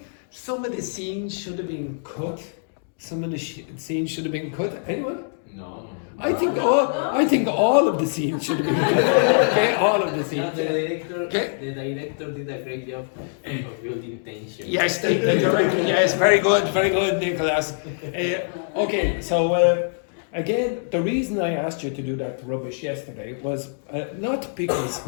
some of the scenes should have been cut? Some of the scenes should have been cut. Anyone? No. I think all of the scenes should have been cut. Okay, all of the scenes. The director did a great job of building tension. Yes, the director. Yes, very good, Nicholas. Okay, so again, the reason I asked you to do that rubbish yesterday was not because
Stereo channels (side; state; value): right; silent; digital silence